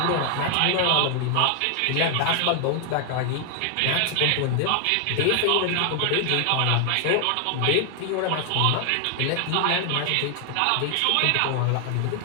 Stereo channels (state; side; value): different; both; correlation 0.00